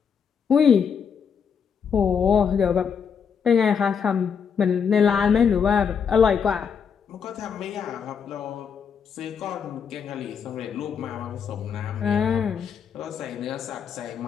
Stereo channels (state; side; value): quieter; right; 6.8 dB